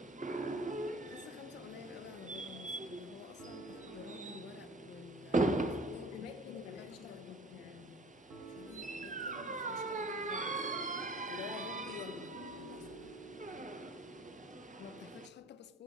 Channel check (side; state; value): both; normal; correlation 0.47